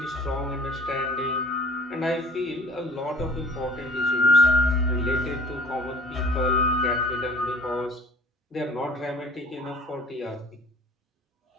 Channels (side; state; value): both; normal; correlation 0.48